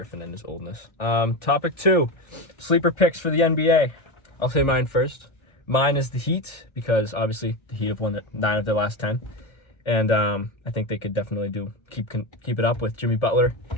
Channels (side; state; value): right; late; 1.6 ms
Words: and his oldness. Topic 2, sleeper picks for the NBA. I'll say mine first. Mine is the Heat because obviously the Heat have won 9 of their last 10. And I think they could definitely keep it up with Jimmy Butler